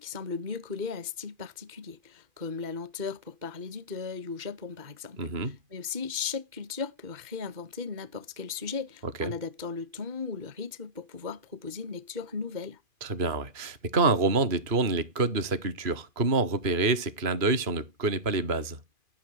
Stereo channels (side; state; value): left; late; 2.4 ms